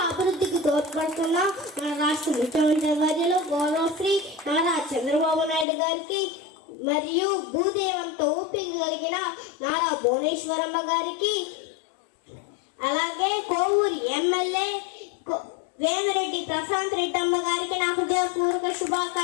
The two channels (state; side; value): drops out; right; at 5.7 s